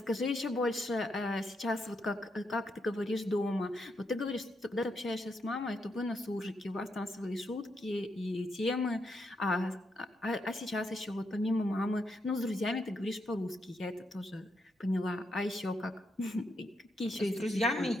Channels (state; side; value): normal; both; correlation 0.80